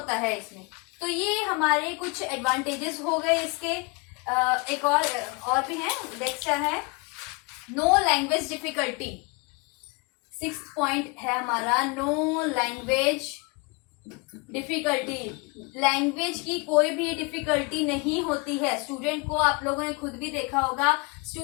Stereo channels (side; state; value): right; quieter; 29.1 dB